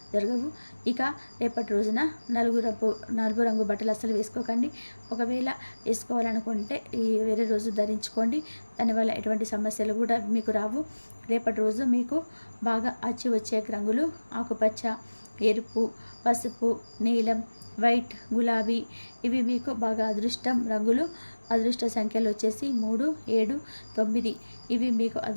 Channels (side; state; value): both; inverted; correlation -1.00